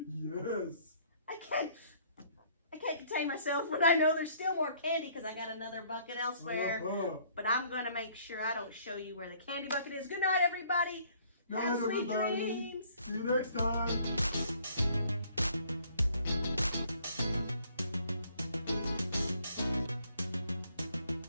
Yes. I can't contain myself when I know there's still more candy because I got another bucket elsewhere. But I'm going to make sure I don't show you where the candy bucket is. Good night, everybody. Good night, Have sweet everybody. dreams. See you next time.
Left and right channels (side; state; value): both; inverted; correlation -0.61